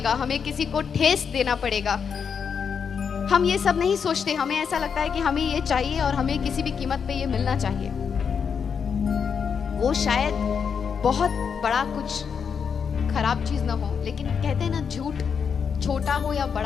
हमें किसी को ठेस देना पड़ेगा। हम ये सब नहीं सोचते। हमें ऐसा लगता है कि हमें ये चाहिए और हमें किसी भी कीमत पे ये मिलना चाहिए। वो शायद बहुत बड़ा कुछ खराब चीज ना हो, लेकिन कहते हैं ना, झूठ छोटा हो या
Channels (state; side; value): quieter; right; 6.6 dB